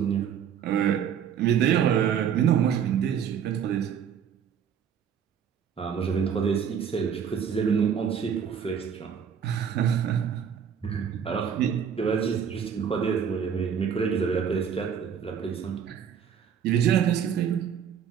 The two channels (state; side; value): quieter; left; 7.9 dB